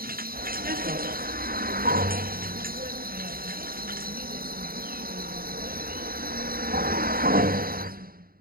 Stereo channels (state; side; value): late; left; 0.43 ms